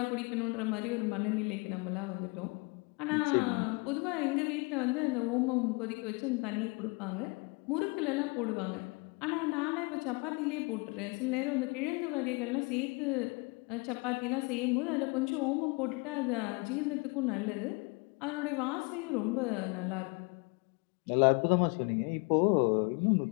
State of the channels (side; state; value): right; quieter; 29.9 dB